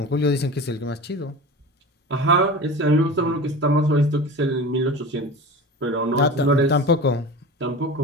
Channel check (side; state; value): both; normal; correlation 0.33